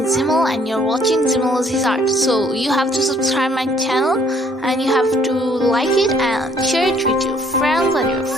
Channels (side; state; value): both; normal; correlation 0.62